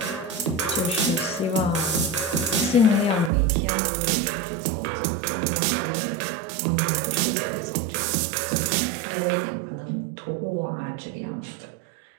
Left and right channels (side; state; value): left; drops out; at 3.3 s